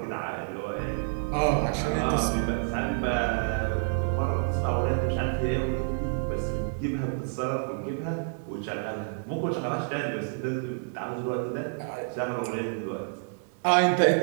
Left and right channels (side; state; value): left; silent; digital silence